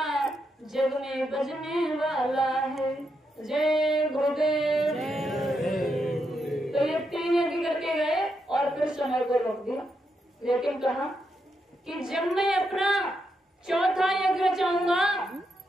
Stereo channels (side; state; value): both; normal; correlation 0.82